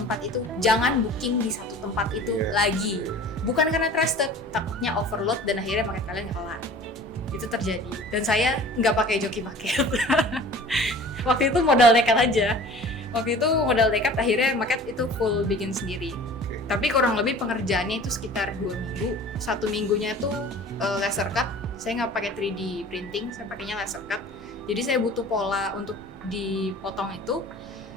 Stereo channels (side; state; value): both; normal; correlation 0.44